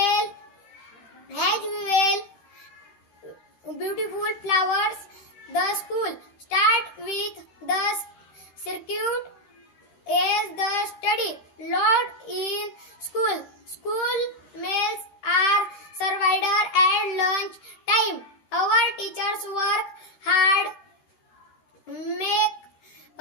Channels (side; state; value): right; late; 13 ms